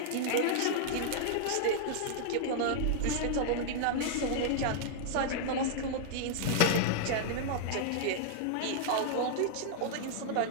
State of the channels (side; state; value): both; different; correlation -0.01